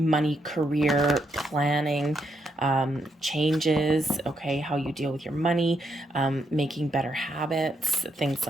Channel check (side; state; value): both; normal; correlation 0.78